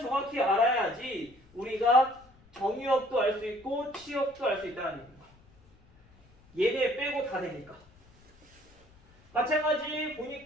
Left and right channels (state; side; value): noise; left; rumble, 28 dB below the sound